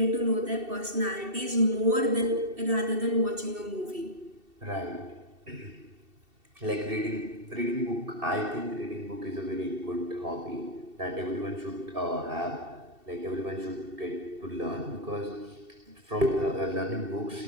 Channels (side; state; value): left; late; 2.7 ms